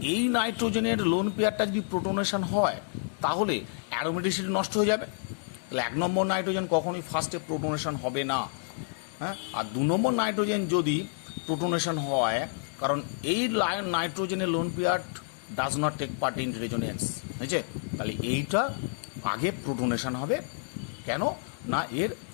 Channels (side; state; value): right; silent; digital silence